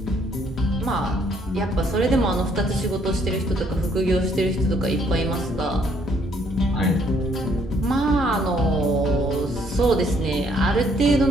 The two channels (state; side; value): normal; both; correlation 0.67